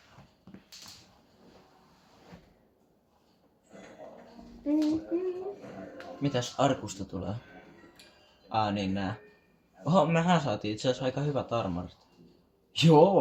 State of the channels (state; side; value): identical; both; correlation 1.00